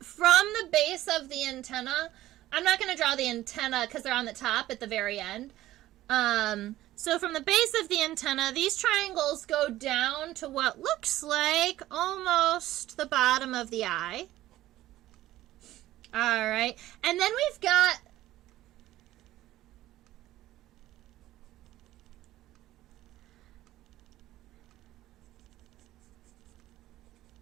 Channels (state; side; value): quieter; left; 15.1 dB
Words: the base of the antenna, I'm not going to draw the antenna because they're on the top at the very end. So from the base of the antenna, these triangles go down to what looks like almost the bottom of the eye. All right. And then we've got